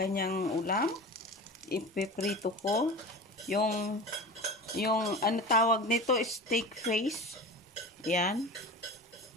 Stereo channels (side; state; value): both; normal; correlation 0.33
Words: ulam. Ipiprito ko. Yung ano tawag nito, steak face. Yan.